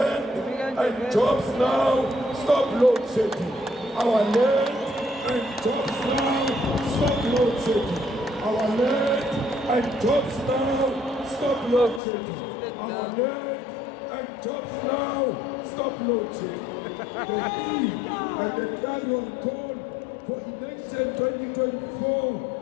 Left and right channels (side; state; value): right; drops out; at 12.0 s